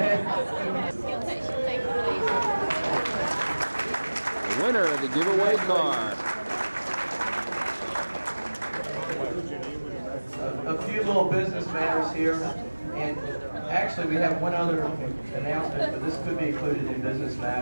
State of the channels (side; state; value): both; inverted; correlation -1.00